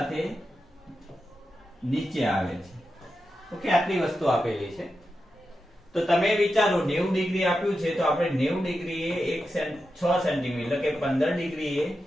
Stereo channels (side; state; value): both; normal; correlation 0.89